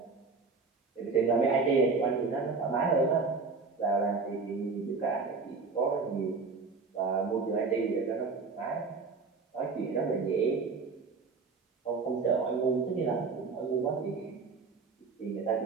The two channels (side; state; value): left; quieter; 4.5 dB